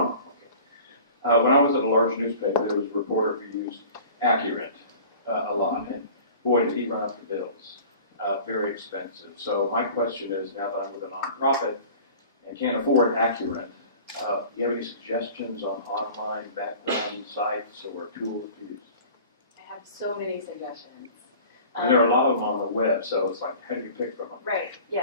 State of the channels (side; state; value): both; inverted; correlation -0.43